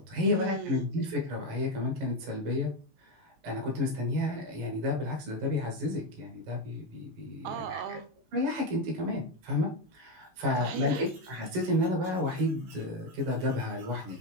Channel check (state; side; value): late; left; 18 ms